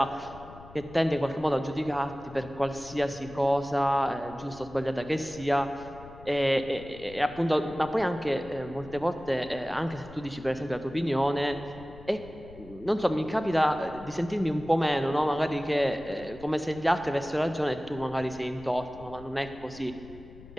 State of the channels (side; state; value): left; noise; rumble, 19 dB below the sound